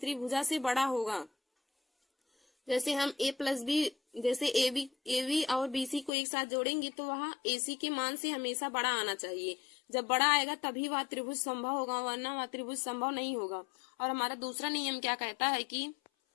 भुजा से बड़ा होगा। जैसे हम A प्लस बी, जैसे ए बी और BC को एक साथ जोड़ेंगे तो वह AC के मान से हमेशा बड़ा आना चाहिए। जब बड़ा आएगा तभी वह त्रिभुज संभव होगा, वरना वह त्रिभुज संभव नहीं होगा। और हमारा दूसरा नियम क्या कहता है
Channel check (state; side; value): drops out; right; at 6.1 s